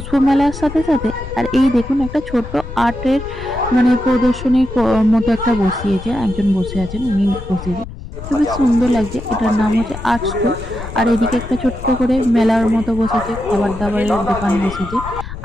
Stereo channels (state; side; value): noise; left; rumble, 11 dB below the sound